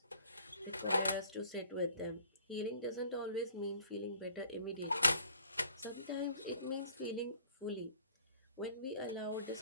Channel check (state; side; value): inverted; both; correlation -0.56